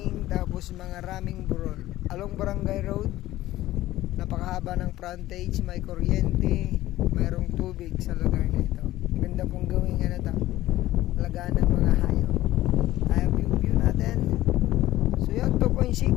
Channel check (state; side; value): quieter; right; 15.5 dB